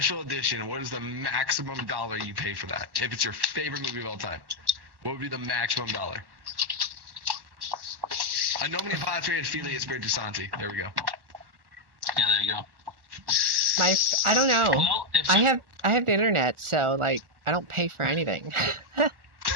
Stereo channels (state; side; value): late; left; 1.1 ms